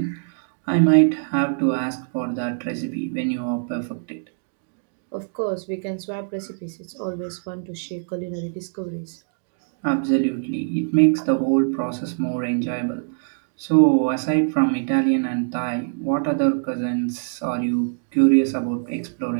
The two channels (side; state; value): left; silent; digital silence